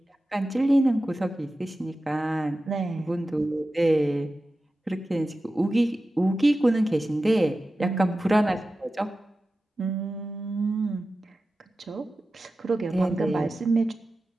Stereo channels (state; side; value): normal; both; correlation 0.94